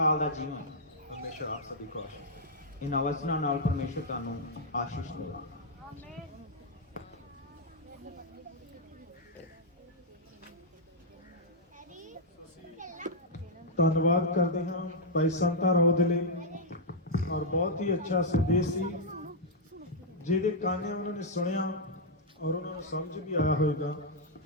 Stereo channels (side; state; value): both; normal; correlation -0.06